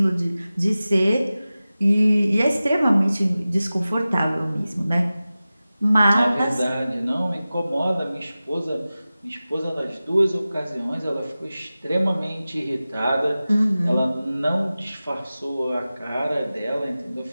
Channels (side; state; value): both; inverted; correlation -0.96